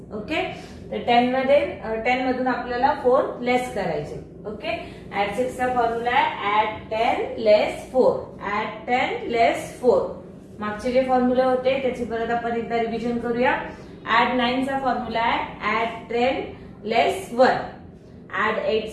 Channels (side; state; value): both; identical; correlation 1.00